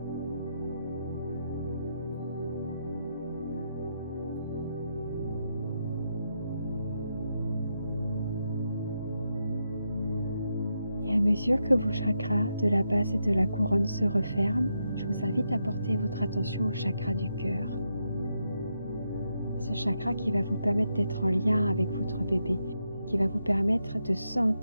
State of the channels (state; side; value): inverted; both; correlation -0.83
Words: Et à mesure que vos chakras de la base et de la couronne se referment, je vous invite à porter votre attention au chakra du cœur. Ce chakra qui va vous permettre d'être en lien avec votre bébé, qui va vous permettre de